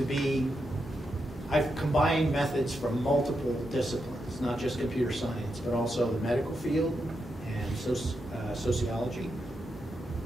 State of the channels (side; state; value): both; normal; correlation 0.84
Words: I've combined methods from multiple disciplines, not just computer science, but also the medical field and sociology,